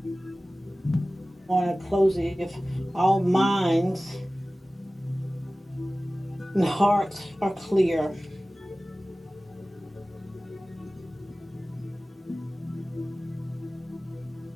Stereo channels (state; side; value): normal; both; correlation 0.97